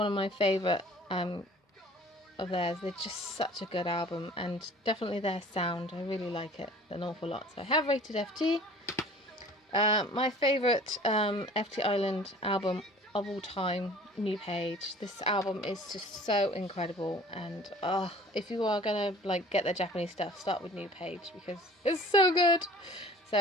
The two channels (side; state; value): both; normal; correlation 0.47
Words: of my favourite of theirs. They're just such a good album, and definitely their sound. I really like it an awful lot. So I have rated FT. My favourite FT Island album of all time, New Page. This album is just so incredible, and if you are gonna like get the Japanese stuff, start with New Page because it's so good.